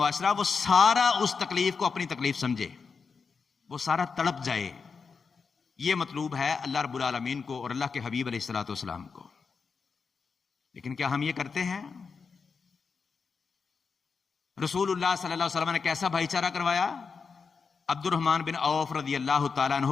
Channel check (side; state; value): right; quieter; 5.3 dB